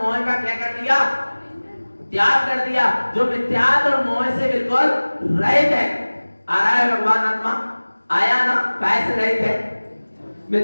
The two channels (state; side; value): inverted; both; correlation -1.00